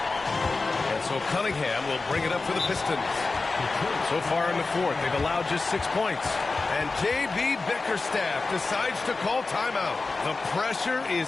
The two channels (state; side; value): quieter; right; 3.8 dB